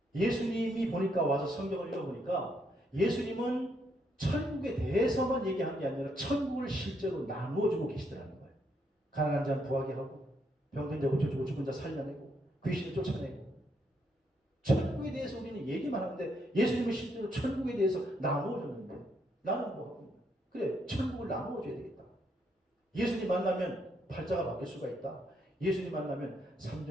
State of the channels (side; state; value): both; normal; correlation 0.75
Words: 예수님이 보니까 와서 성경을 읽어보니까 예수님은 천국에 대해서만 얘기한 게 아니라 천국을 실제로 나누어주고 계시더라는 거예요. 가난한 자는 부하게 하고 병든 자 고쳐주고 죽은 자 살려내고 귀신을 쫓아내고 천국에 대해서 우리는 얘기만 하는데 예수님은 실제로 천국에 대해서 나누어줬는데 나는 뭐 하고 그래 천국을 나누어줘야 되겠다. 예수님 만나면 팔자가 바뀔 수가 있다. 예수님 만나면